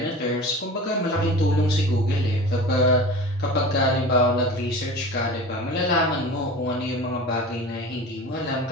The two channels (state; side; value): normal; both; correlation 0.35